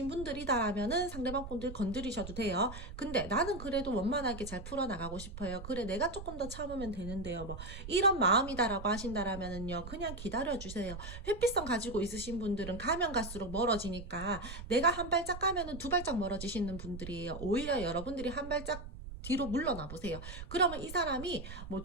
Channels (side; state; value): right; noise; rumble, 11 dB below the sound